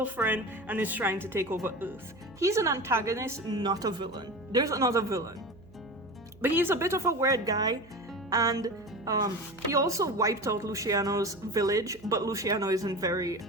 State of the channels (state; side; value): noise; right; hum, 24 dB below the sound